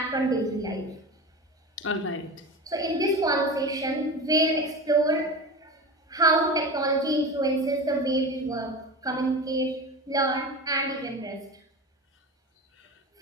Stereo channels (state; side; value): normal; both; correlation 0.28